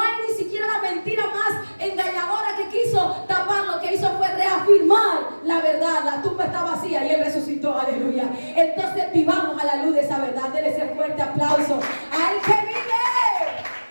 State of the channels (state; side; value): inverted; both; correlation -1.00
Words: ni siquiera la mentira más engañadora que quiso tapar, lo que hizo fue reafirmar la verdad. La tumba está vacía y Él resucitó, aleluya. Entonces vivamos a la luz de esa verdad. Denle ese fuerte aplauso al que vive.